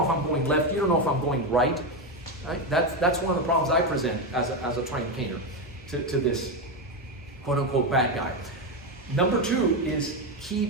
if I'm going left, you don't know if I'm going right. Right? That's one of the problems I present as a trained caner to this quote unquote bad guy. Number 2 is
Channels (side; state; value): both; normal; correlation 0.11